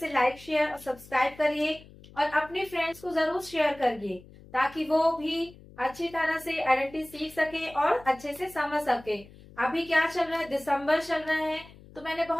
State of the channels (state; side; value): noise; left; hum, 21 dB below the sound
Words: लाइक, शेयर और सब्सक्राइब करिए और अपने फ्रेंड्स को जरूर शेयर करिए, ताकि वो भी अच्छी तरह से आइडेंटिटी सीख सके और अच्छे से समझ सके। अभी क्या चल रहा है, दिसंबर चल रहा है, तो मैंने